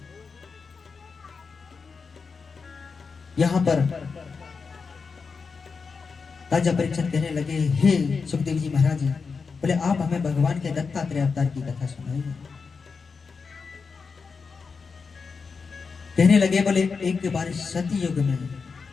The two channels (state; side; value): quieter; right; 5.1 dB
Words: यहां पर राजा परीक्षित कहने लगे, हे सुखदेव जी महाराज, बोले आप हमें भगवान के दत्तात्रेय अवतार की कथा सुनाइए। कहने लगे, बोले एक बार सती युग में